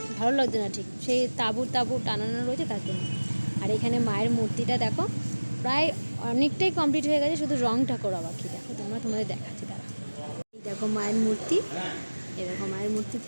ভালো লাগছে না ঠিক, সেই তাঁবু টানানো রয়েছে তার জন্য। আর এখানে মায়ের মূর্তিটা দেখো প্রায় অনেকটাই কমপ্লিট হয়ে গেছে, শুধু রংটা করা বাকি। দেখো তোমাদের দেখাচ্ছি তারা। এই দেখো মায়ের মূর্তি, এই দেখো মায়ের মূর্তি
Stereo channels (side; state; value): both; inverted; correlation -1.00